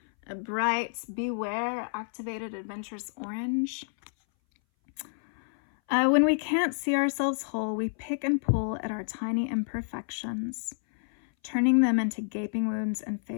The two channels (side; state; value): right; silent; 59 dB below the other